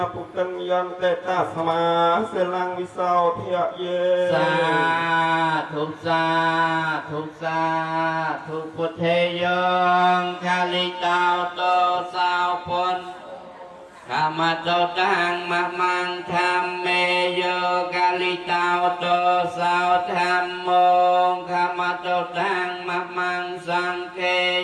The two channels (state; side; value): identical; both; correlation 1.00